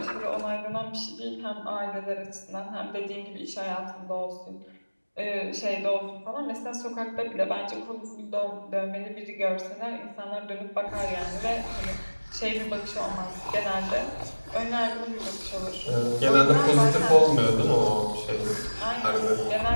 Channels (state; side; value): inverted; both; correlation -1.00